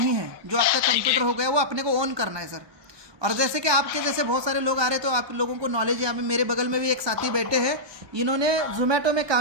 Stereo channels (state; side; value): late; left; 1.2 ms